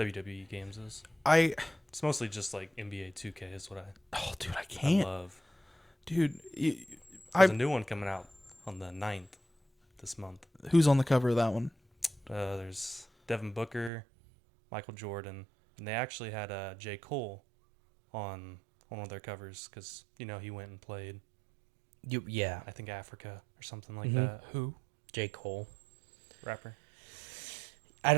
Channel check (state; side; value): drops out; left; at 13.9 s